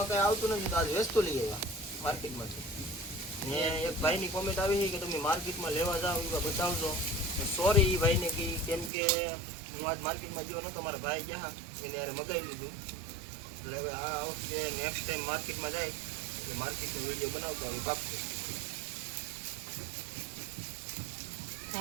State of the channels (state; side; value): drops out; left; at 8.9 s